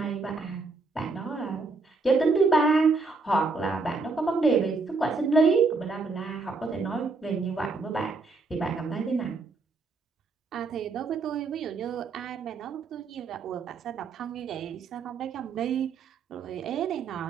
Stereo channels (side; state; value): left; quieter; 4.0 dB